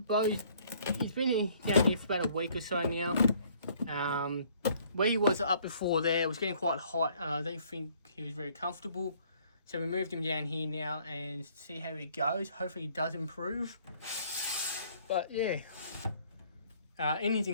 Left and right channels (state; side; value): inverted; both; correlation -0.61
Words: he's been down here for about a week or so now. Where he was up before there, it was getting quite hot, and I don't think he was very comfortable. So we moved him down here now and see how he goes. Hopefully he does improve. But yeah, in his